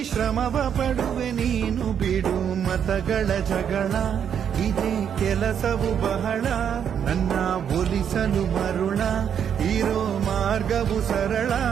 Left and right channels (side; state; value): left; quieter; 8.3 dB